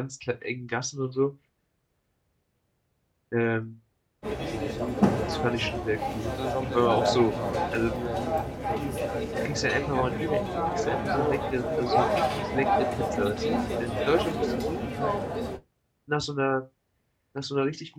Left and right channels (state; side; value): identical; both; correlation 1.00